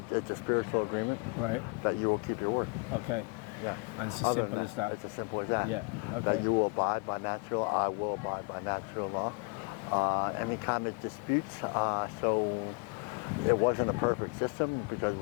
It's a spiritual agreement. Right. That you will keep your word. Okay. Yeah. And it's as simple as that. It's as simple as that. Yeah. Okay. That you will abide by natural. I will abide by natural law. Any kind of disputes. So it wasn't a perfect system because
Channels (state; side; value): quieter; right; 30.0 dB